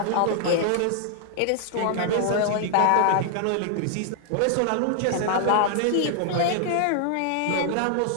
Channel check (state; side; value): different; both; correlation -0.01